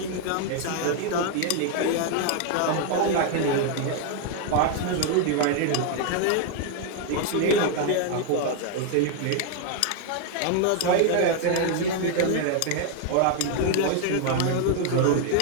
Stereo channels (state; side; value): different; both; correlation 0.00